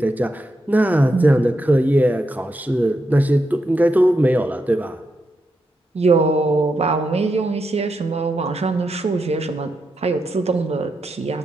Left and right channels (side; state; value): both; normal; correlation 0.84